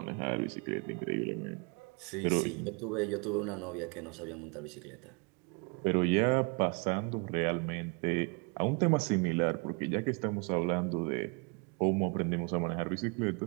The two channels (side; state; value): left; quieter; 31.8 dB